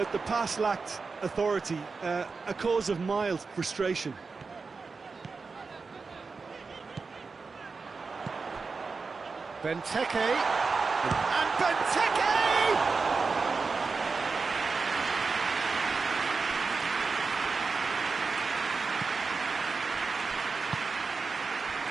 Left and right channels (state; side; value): quieter; left; 4.5 dB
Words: the pass lacked authority, a cause of mild frustration. Benteke. And Benteke!